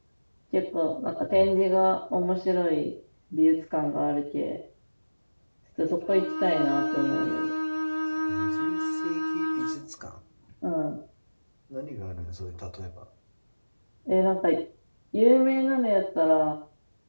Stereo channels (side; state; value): both; inverted; correlation -1.00